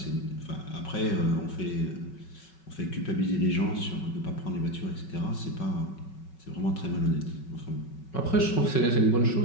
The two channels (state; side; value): late; right; 5.3 ms